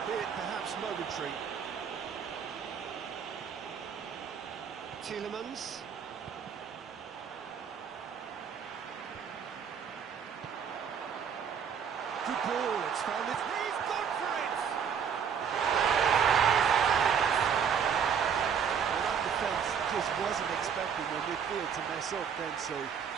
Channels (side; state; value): left; quieter; 7.3 dB